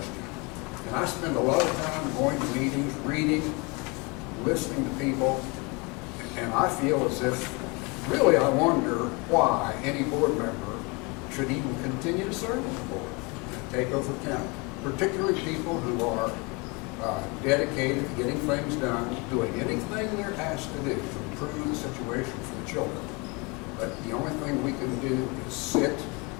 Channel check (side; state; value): right; quieter; 28.7 dB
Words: And I spend a lot of time going to meetings, reading, listening to people, and I feel as if, really, I wonder why any board member should even continue to serve on the board and take over county, particularly people who are dedicated to getting things done, doing anything they're asked to do to improve the situation for the children. But the only thing we can do is sit,